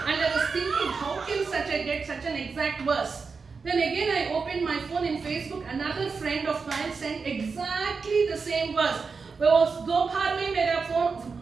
I was thinking, how can get such an exact verse? Then again I opened my phone in Facebook. Another friend of mine sent exactly the same verse. वो दोपहर में मेरा phone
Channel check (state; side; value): quieter; left; 4.9 dB